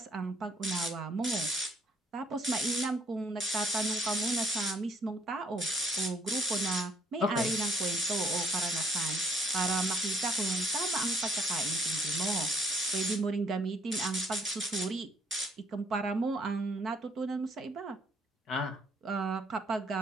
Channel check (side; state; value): both; normal; correlation 0.63